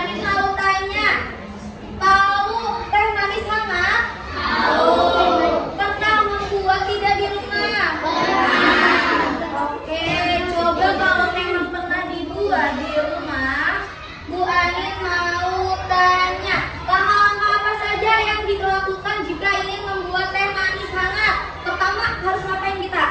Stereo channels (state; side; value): identical; both; correlation 1.00